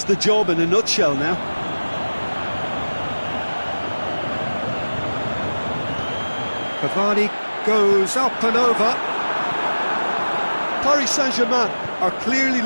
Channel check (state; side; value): inverted; both; correlation -1.00